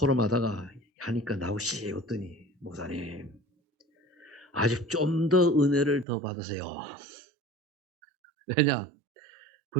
하다가 하니까 나오시 어떠니 목사님 아직 좀 더 은혜를 더 받으세요. 왜냐?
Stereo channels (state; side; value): drops out; left; at 6.1 s